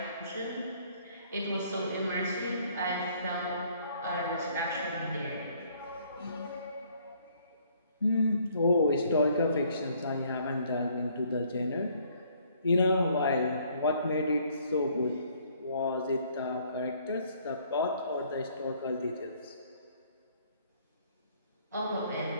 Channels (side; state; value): both; inverted; correlation -0.62